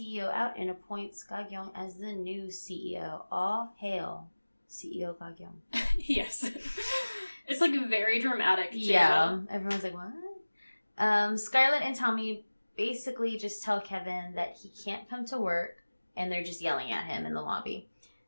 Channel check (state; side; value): inverted; both; correlation -1.00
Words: out and appoints Ga-kyung as the new CEO. All hail CEO Ga-kyung. Yes. It's, like, very dramatic, too. Yeah. Everyone's like, what? Scarlett and Tommy basically just tell Kevin that he can't come to work, and they're just yelling at him in the lobby.